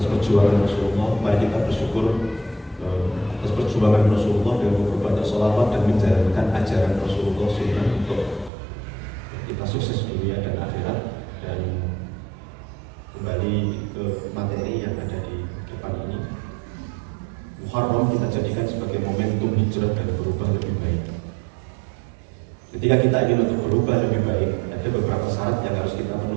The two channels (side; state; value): left; drops out; at 8.5 s